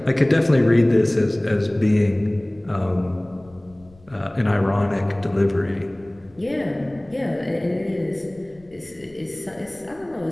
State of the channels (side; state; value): left; noise; rumble, 27 dB below the sound